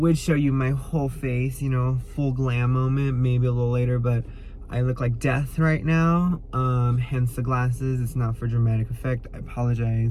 show you my whole face, full glam moment, maybe a little later, but I look like death right now, hence the glasses. It's not for dramatic effect. I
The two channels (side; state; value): both; identical; correlation 1.00